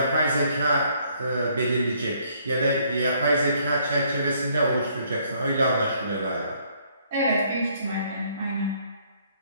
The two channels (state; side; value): inverted; both; correlation -0.66